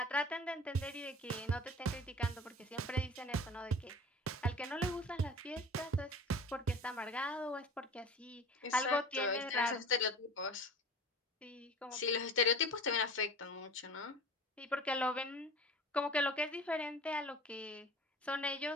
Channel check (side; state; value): both; normal; correlation 0.39